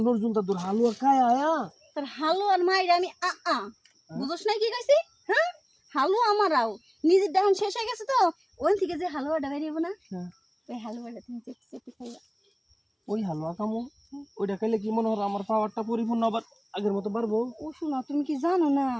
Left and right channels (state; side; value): identical; both; correlation 1.00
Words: নজরুল দাদুর হালুয়া খায় আয়া। তোর হালুয়ার মাইরে আমি বুঝোস না কি কইছি? হ্যাঁ হালুয়া আমারাও নিজের দেহন শেষ হয়ে গেছে, তো ওখান থেকে যে হালুয়াটা বেরিয়ে না, ওই হালুয়াটা তুমি চেপে চেপে খাইবা। ওই হালুয়া কামো, ওইটা খাইলে কি মনে হয় আমার পাওয়ারটা পরিপূর্ণ আবার আগের মতো বাড়বো। ও শোনা, তুমি কি জানো না,